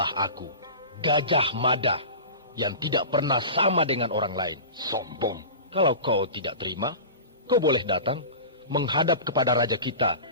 aku, Gajah Mada, yang tidak pernah sama dengan orang lain. Sombong. Kalau kau tidak terima, kau boleh datang menghadap kepada raja kita,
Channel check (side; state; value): both; inverted; correlation -0.33